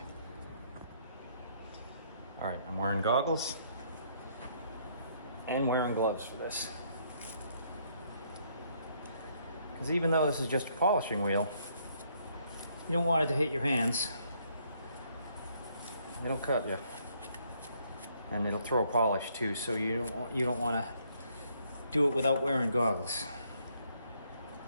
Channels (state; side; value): inverted; both; correlation -0.69